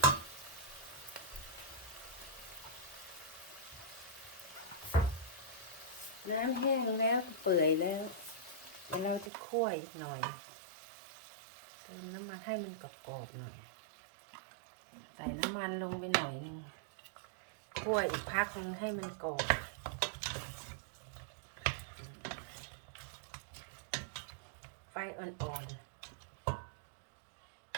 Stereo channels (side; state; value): left; drops out; at 9.3 s